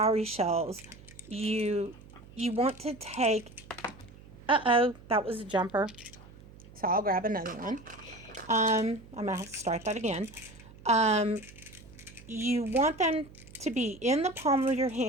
shells, you want to take, that was a jumper. So I'll grab another one. I'm going to have to start that again. You want them to be in the palm of your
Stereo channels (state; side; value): noise; right; hum, 20 dB below the sound